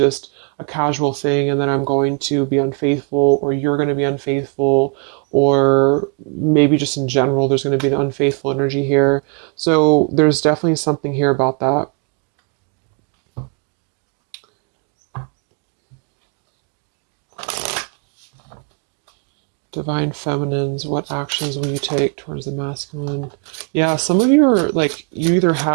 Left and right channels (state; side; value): quieter; left; 36.9 dB